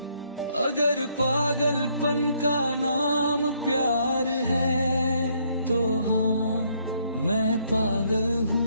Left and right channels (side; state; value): both; inverted; correlation -0.70